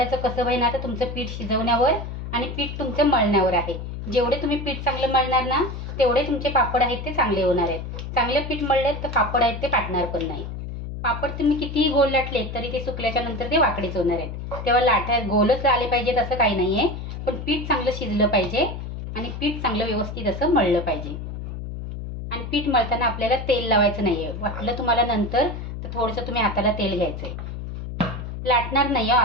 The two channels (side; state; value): left; noise; hum, 7 dB below the sound